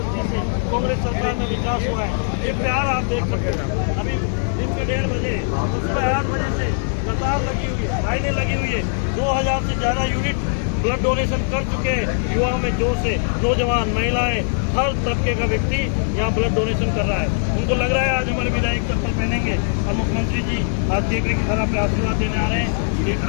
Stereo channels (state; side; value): silent; right; 65 dB below the other